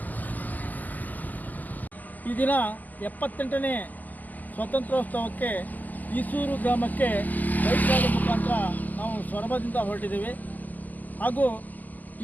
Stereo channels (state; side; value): late; right; 0.082 ms